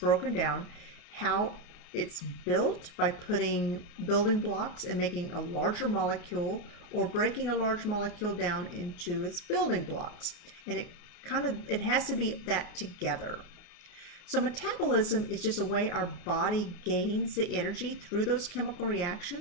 down, how it's built by putting building blocks and making a larger molecule or breaking a large molecule down into its building blocks. And it has to be that together. So metabolism is just a way our body gains the energy through those chemical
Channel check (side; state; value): right; late; 29 ms